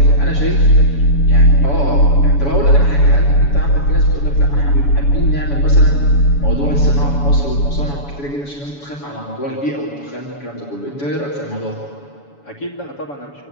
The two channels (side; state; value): right; late; 7.1 ms